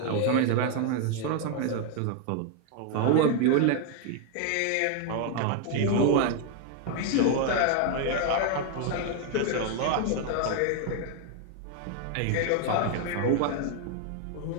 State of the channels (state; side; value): different; both; correlation 0.00